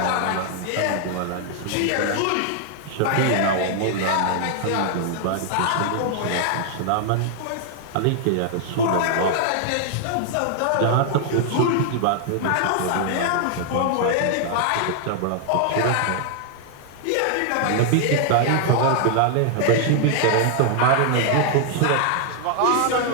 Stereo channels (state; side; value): different; both; correlation 0.00